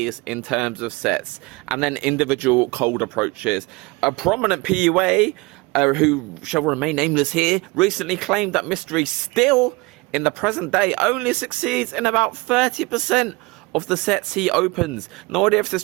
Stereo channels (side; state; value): left; quieter; 24.9 dB